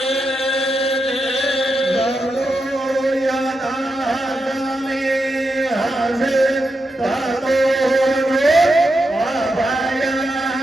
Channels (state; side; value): normal; both; correlation 0.86